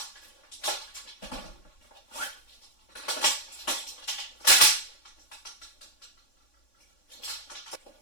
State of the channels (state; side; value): late; right; 3.5 ms